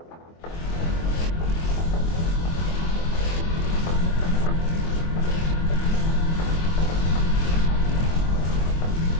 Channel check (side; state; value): right; late; 24 ms